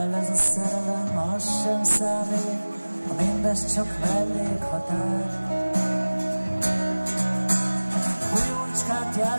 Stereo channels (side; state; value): both; inverted; correlation -1.00